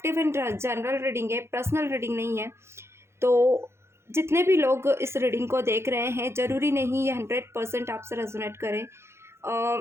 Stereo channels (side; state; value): left; late; 0.13 ms